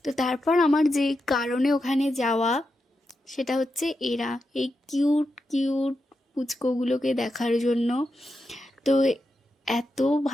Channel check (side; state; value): both; normal; correlation 0.87